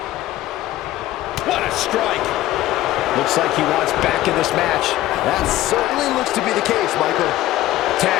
What a strike! Looks like he wants back in this match. That certainly looks to be the case, Michael.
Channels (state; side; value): quieter; right; 15.2 dB